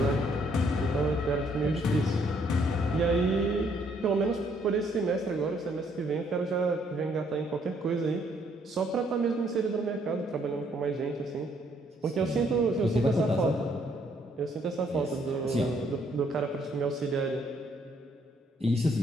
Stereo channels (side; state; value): both; normal; correlation 0.68